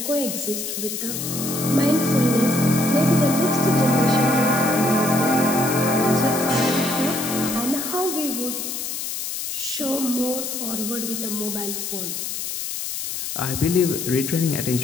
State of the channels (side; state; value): left; noise; hiss, 5 dB below the sound